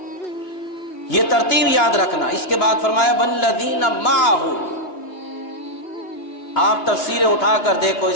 یہ ترتیب یاد رکھنا۔ اس کے بعد فرمایا والذین معہ، آپ تفسیریں اٹھا کر دیکھو،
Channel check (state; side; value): late; right; 2.7 ms